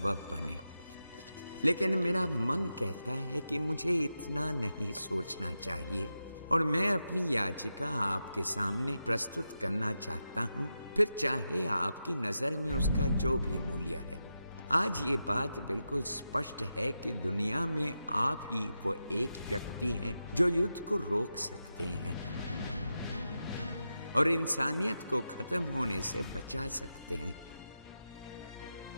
बने। लेकिन मेरा मन कहता है कि मुझे इतना नहीं सोचना चाहिए, और मैं अपनी याचिका आपके सामने प्रस्तुत करना चाहता हूँ, फिर चाहे आपकी नजर में उसका जो भी मूल्य है। आज ये बात बिल्कुल स्पष्ट है कि दुनिया में आप ही वो एक व्यक्ति हैं जो युद्ध को रोक सकते हैं और इंसानियत को खत्म होने से बचा सकते हैं।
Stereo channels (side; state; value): both; inverted; correlation -0.89